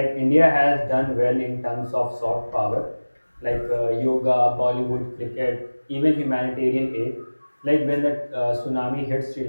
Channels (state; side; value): inverted; both; correlation -1.00